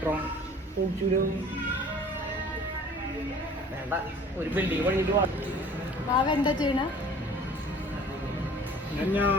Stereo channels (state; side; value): normal; both; correlation 0.48